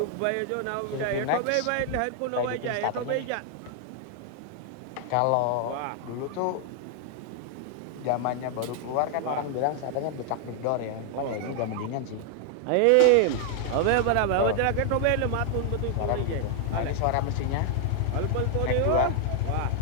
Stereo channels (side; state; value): both; different; correlation 0.00